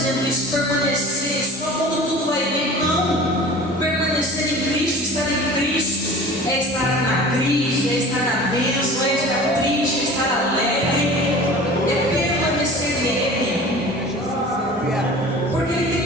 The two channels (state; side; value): normal; both; correlation 0.41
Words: isso, permanecer só quando tudo vai bem. Não. Permanecer em Cristo, estar em Cristo, é estar na crise, é estar na bênção, é estar triste, é estar alegre, é permanecer nele. Porque Ele tem